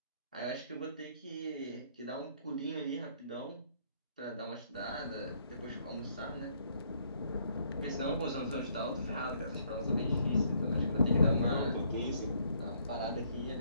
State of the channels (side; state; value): both; inverted; correlation -0.67